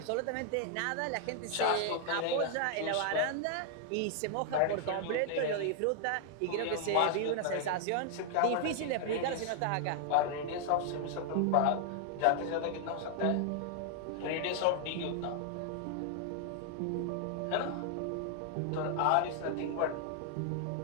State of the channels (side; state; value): both; different; correlation 0.00